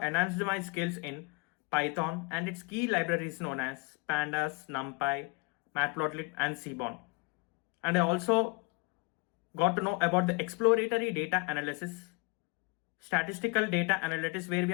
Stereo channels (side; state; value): right; quieter; 29.7 dB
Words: enhanced my skills in Python and its key libraries known as Pandas, NumPy, Matplotlib, and Seaborn. And I also got to know about the exploratory data analysis, statistical data analytics, where